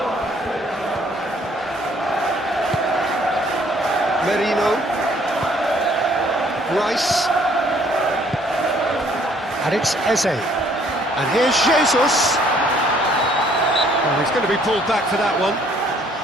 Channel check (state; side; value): normal; both; correlation 0.62